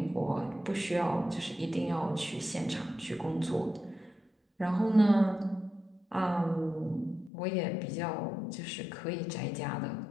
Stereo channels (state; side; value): drops out; right; at 7.3 s